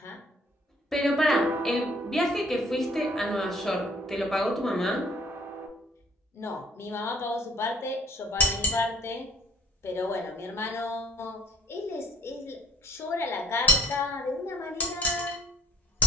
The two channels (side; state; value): both; normal; correlation 0.55